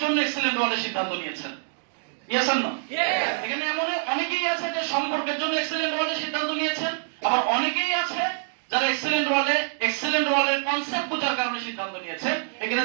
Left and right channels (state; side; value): silent; left; digital silence